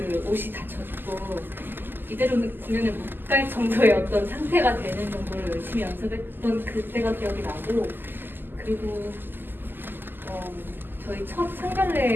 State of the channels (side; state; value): left; late; 0.094 ms